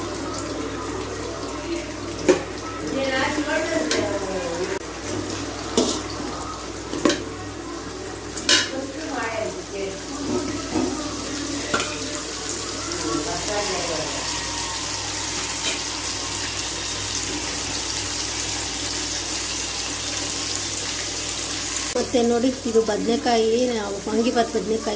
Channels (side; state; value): both; identical; correlation 1.00